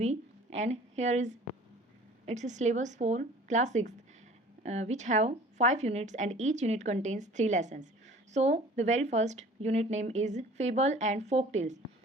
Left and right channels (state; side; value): normal; both; correlation 0.47